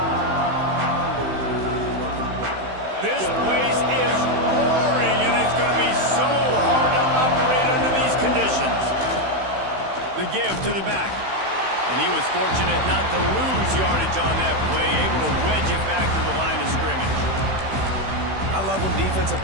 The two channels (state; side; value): late; left; 16 ms